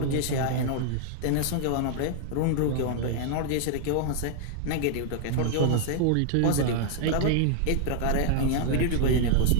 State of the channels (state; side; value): different; both; correlation 0.00